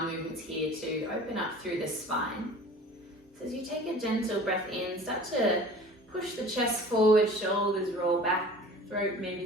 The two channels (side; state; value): both; normal; correlation 0.44